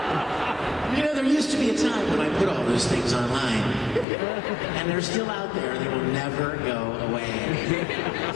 You know, there used to be a time when I put all those things online, and they're still out there. They will never go away.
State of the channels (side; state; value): right; drops out; at 4.0 s